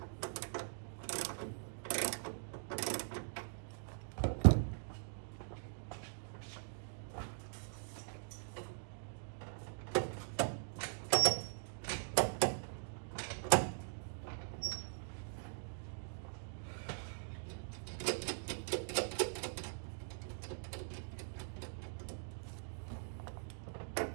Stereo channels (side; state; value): left; silent; digital silence